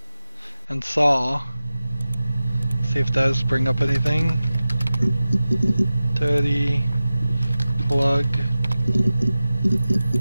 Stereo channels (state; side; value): inverted; both; correlation -0.96